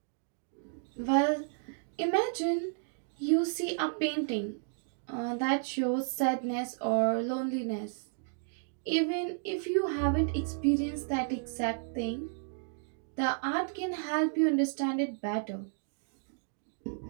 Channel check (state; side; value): silent; left; digital silence